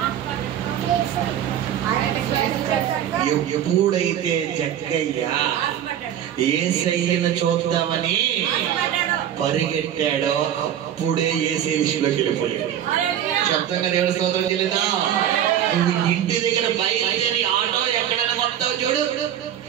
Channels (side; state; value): left; quieter; 10.4 dB